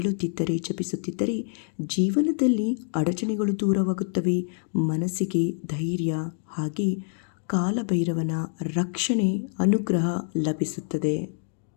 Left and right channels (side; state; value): right; silent; 58 dB below the other